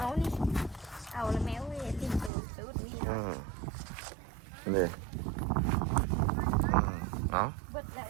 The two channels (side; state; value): left; drops out; at 2.3 s